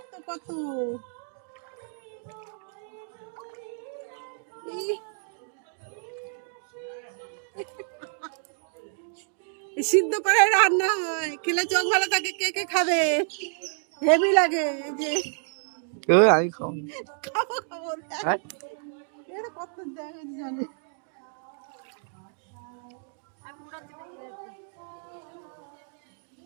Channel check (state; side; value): silent; left; digital silence